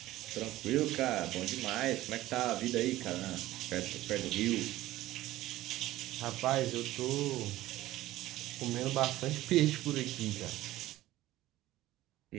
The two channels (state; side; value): quieter; left; 15.9 dB